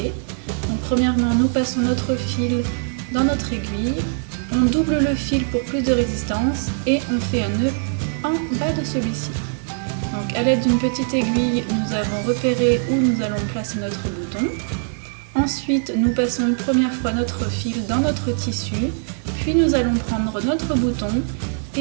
Donc premièrement, nous passons notre fil dans notre aiguille, on double le fil pour plus de résistance et on fait un nœud en bas de celui-ci. Donc à l'aide d'une petite aiguille, nous avons repéré où nous allons placer notre bouton. Ensuite, nous passons une première fois notre fil dans notre tissu, puis nous allons prendre notre bouton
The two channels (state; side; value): silent; left; digital silence